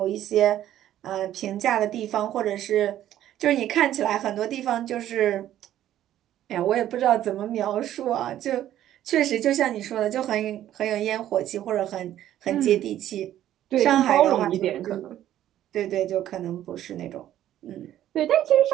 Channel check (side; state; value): left; quieter; 12.2 dB